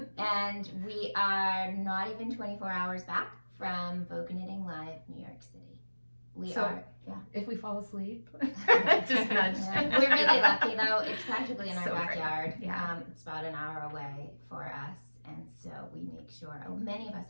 And we are not even 24 hours back from Vogue Knitting Live, New York City. If we fall asleep, just nudge. Yeah. We're really lucky though. It's practically in our So great. backyard. Yeah. It's about an hour away for us, and so we make sure. Many of us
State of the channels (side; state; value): both; inverted; correlation -1.00